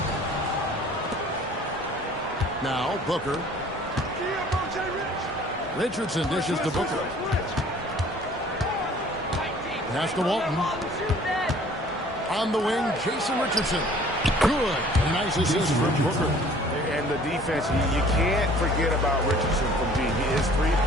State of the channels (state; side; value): normal; both; correlation 0.52